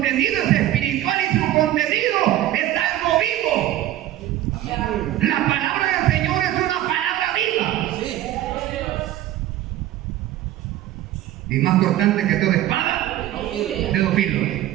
es espiritual y su contenido es algo vivo. La palabra del Señor es una palabra viva. Y más cortante que toda espada de dos filos.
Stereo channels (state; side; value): quieter; left; 13.8 dB